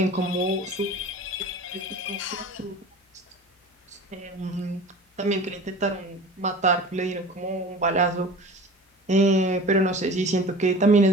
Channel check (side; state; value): both; normal; correlation 0.39